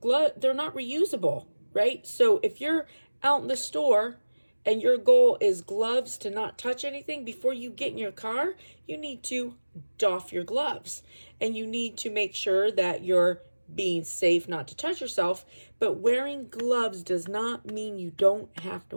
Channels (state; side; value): inverted; both; correlation -1.00